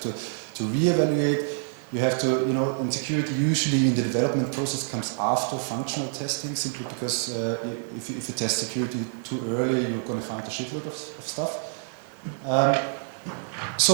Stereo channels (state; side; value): silent; left; digital silence